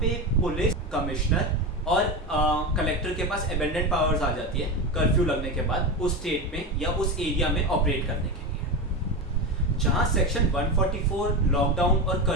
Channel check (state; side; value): normal; both; correlation 0.19